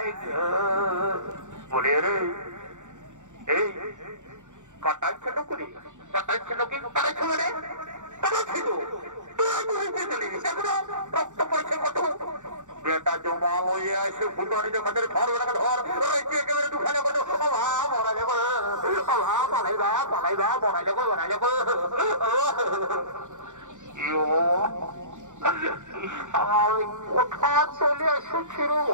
গো। বলে রে এই কাটাই ছিল করি কাটাই ছিল কি কাটাই ছিল রে কাটাই ছিল রক্ত পড়ছে কত বেটা জমা লইয়ে আসে ফুটানি দেখাদের ধর ধর রয়েছে একেবারে দুখানে কত মরা যাবো পালাই দা বড়াই যাবো কোথা চলে এসেছিল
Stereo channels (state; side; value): late; left; 0.85 ms